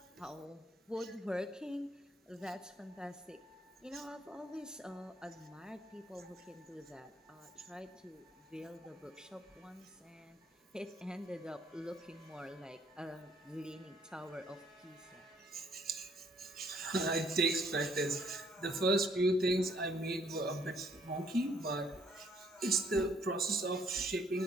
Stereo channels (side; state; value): both; normal; correlation 0.65